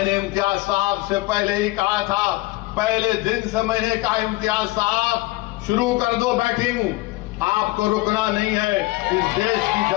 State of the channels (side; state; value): right; quieter; 20.7 dB